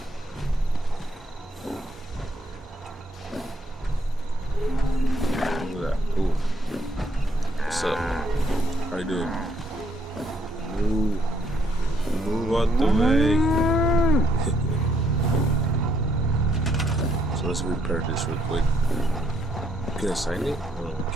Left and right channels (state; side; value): normal; both; correlation 0.70